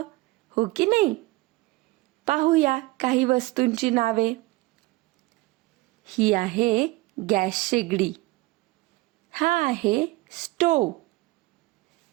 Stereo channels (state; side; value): quieter; left; 21.2 dB